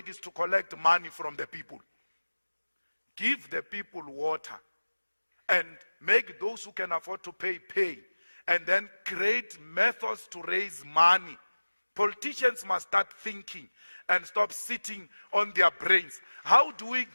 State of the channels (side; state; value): both; inverted; correlation -1.00